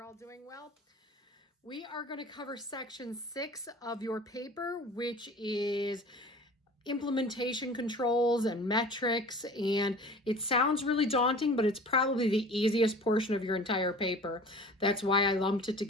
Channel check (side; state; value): both; normal; correlation 0.42